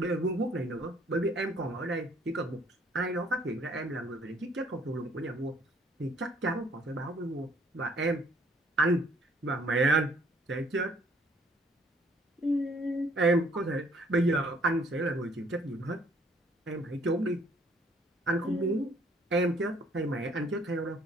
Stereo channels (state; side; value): normal; both; correlation 0.61